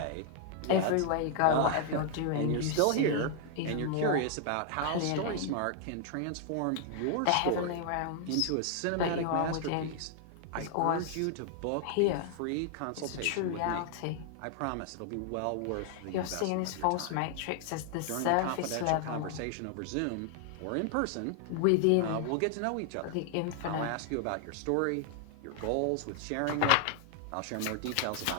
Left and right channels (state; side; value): different; both; correlation 0.00